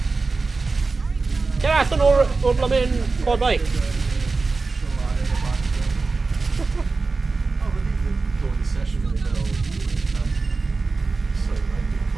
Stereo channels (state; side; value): quieter; left; 3.9 dB